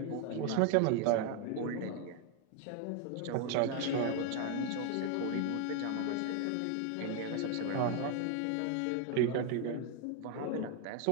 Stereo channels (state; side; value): different; both; correlation 0.01